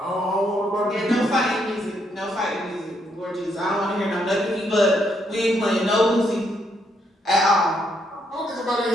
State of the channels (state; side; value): normal; both; correlation 0.75